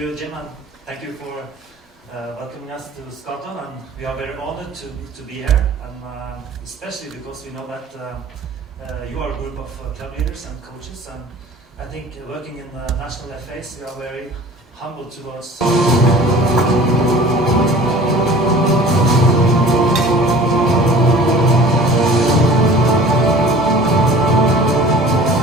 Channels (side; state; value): both; normal; correlation 0.44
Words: Jim, and thank you for welcoming us to Scotland. And we are very honored to be here, and especially because we know that you are a group of club leaders and coaches, and I think working in the national FAs, we are very humble towards.